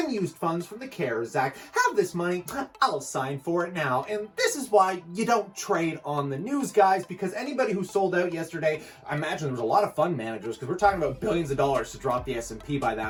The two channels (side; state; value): both; identical; correlation 1.00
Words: funds from the CARES Act. Have this money, I'll sign for it now." And this is why you don't trade on the news, guys, because anybody who sold out yesterday, I imagine there was a lot of fund managers, because we're talking about billions of dollars to drop the S&P by